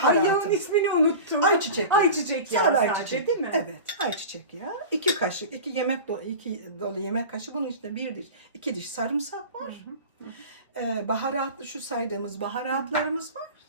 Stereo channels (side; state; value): both; inverted; correlation -0.33